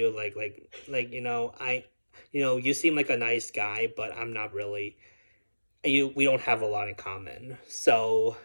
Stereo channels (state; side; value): inverted; both; correlation -1.00